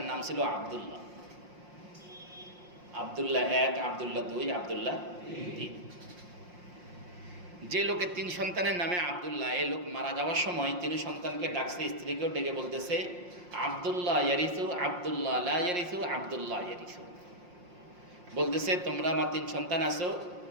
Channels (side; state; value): left; late; 5.6 ms